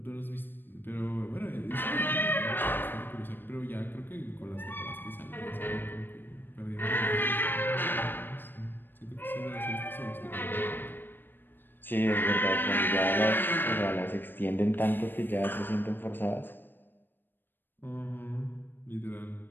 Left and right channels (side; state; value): right; late; 0.095 ms